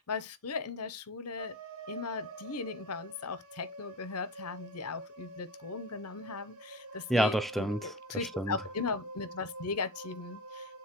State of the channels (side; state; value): both; normal; correlation 0.26